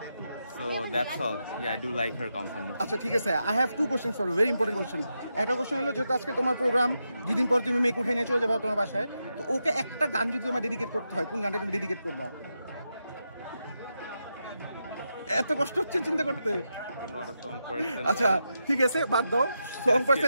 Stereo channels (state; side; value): inverted; both; correlation -0.86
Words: so that's all yeah I do like her company আচ্ছা ঠিক আছে I have two questions for you very important question একটা কোশ্চেন হলো যেহেতু আজকে তোমার প্রোগ্রাম দুই দিন পর তুমি মেক উঠে নিয়ে চলে যাবে তোমার বাসায় তো ওকে একটা গান যদি তোমার ডেডিকেট করতে হয় কোন গানটা তুমি ডেডিকেট করবা এত কষ্ট হচ্ছে চিন্তা করতে আচ্ছা ঠিক আছে বাদ দাও সং